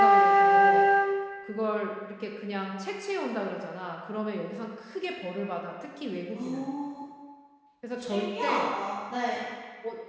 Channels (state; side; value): identical; both; correlation 1.00